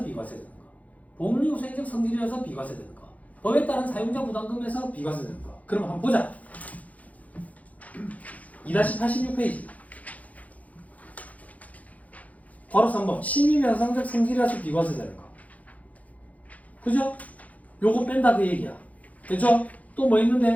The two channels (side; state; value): right; late; 0.072 ms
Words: 비과세 되는 거, 복리후생적 성질이라서 비과세 되는 거, 법에 따른 사용자 부담금에서 비과세 되는 거. 그럼 한번 보자. 2-86페이지. 바로 3번. 실비배상적 성질이라서 비과세 되는 거. 그죠? 요거 뺀다 그 얘기야. 됐죠? 또 뭐